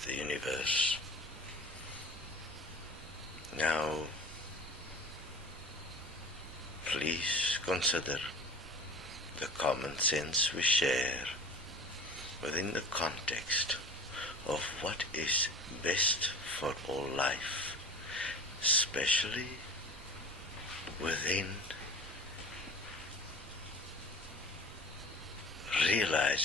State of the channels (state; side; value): normal; both; correlation 0.39